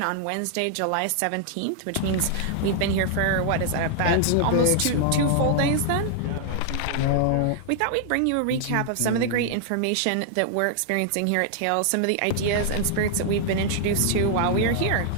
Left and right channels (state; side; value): different; both; correlation -0.01